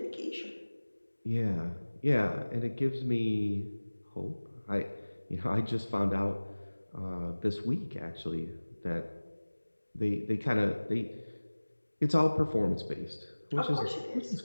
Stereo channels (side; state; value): both; inverted; correlation -1.00